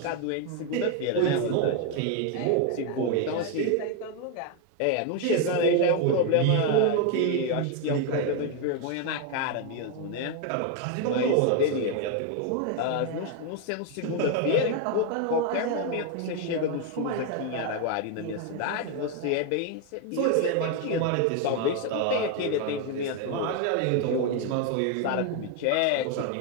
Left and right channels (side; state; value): both; different; correlation 0.01